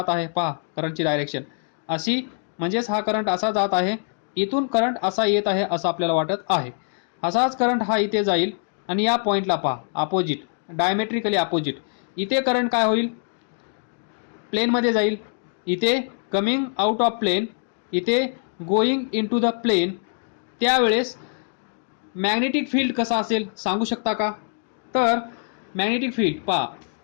आहे. पहा करंटची डायरेक्शन अशी, म्हणजेच हा करंट असा जात आहे. इथून करंट असा येत आहे असं आपल्याला वाटत आहे. असाच करंट हा इथे जाईल आणि या पॉईंटला पहा, अपोजिट, डायमेट्रिकली अपोजिट. इथे करंट काय होईल, प्लेनमध्ये जाईल. इथे कमिंग आउट ऑफ प्लेन, इथे going into the plane. त्यावेळेस मॅग्नेटिक फील्ड कसा असेल सांगू शकता का? तर मॅग्नेटिक फील्ड पहा,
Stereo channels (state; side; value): silent; right; 63 dB below the other